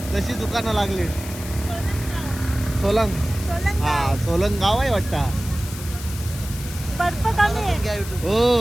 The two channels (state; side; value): noise; left; hiss, 13 dB below the sound